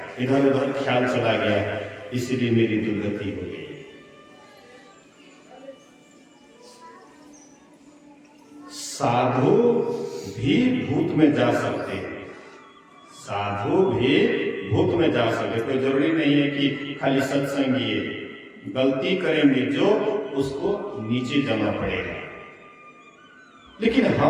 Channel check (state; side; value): identical; both; correlation 1.00